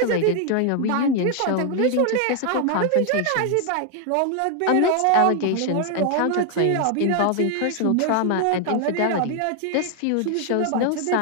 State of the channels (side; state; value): both; different; correlation 0.00